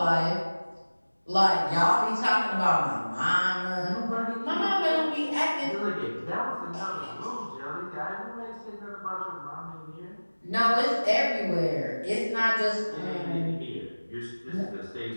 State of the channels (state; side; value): inverted; both; correlation -1.00